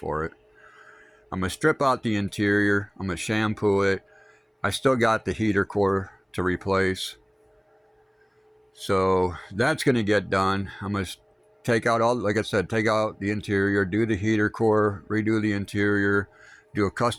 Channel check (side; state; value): both; identical; correlation 1.00